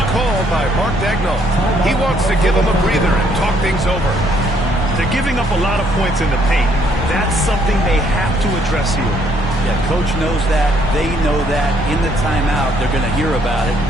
call by Mark Daigneault. He wants to give him a breather and talk things over. They're giving up a lot of points in the paint. That's something they have to address here. Yeah, Coach knows that. They know that. In the timeout, they're going to hear about it,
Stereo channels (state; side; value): normal; both; correlation 0.67